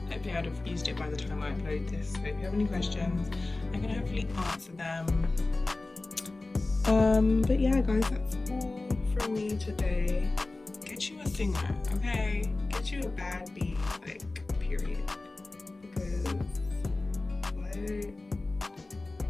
hopefully I'd have used it by the time I upload this. So if you have any questions, I can hopefully answer them. But yeah guys, that's all from me today. Get you a Singer, okay? Get you a bad bee, like, period. Because, what?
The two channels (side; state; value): right; quieter; 3.2 dB